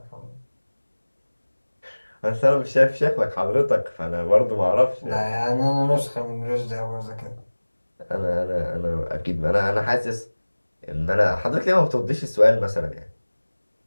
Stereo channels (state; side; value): inverted; both; correlation -1.00